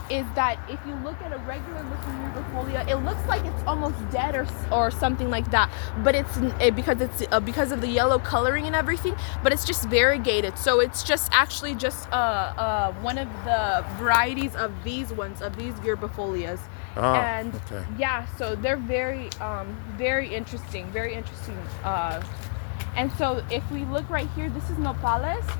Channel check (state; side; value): silent; right; 56 dB below the other